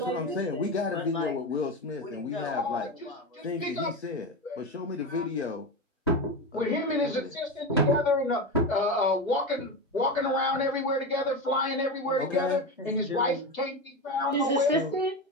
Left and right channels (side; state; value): both; normal; correlation 0.20